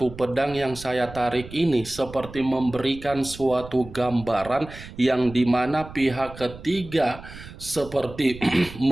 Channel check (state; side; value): noise; right; rumble, 15 dB below the sound